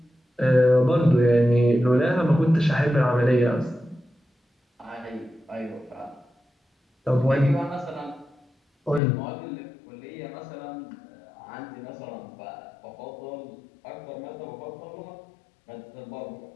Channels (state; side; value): drops out; right; at 9.0 s